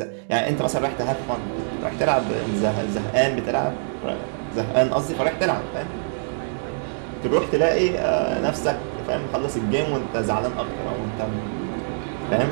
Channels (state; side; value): silent; left; digital silence